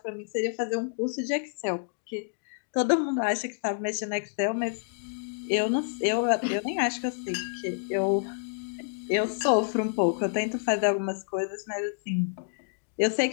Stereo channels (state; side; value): silent; right; digital silence